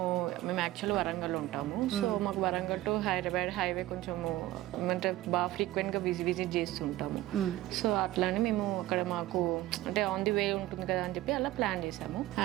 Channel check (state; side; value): quieter; left; 16.1 dB